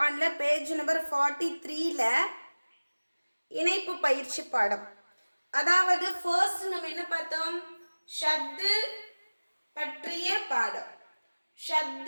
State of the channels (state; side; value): inverted; both; correlation -1.00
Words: பேஜ் நம்பர் 43ல இணைப்பு பயிற்சி பாடம். அதாவது ஃபர்ஸ்ட் நம்ம என்ன பார்த்தோம்? ஷத்து பற்றிய பாடம்.